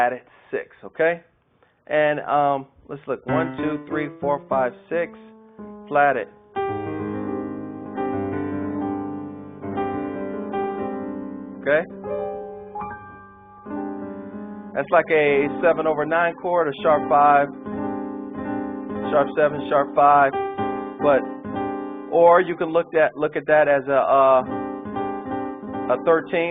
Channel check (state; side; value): identical; both; correlation 1.00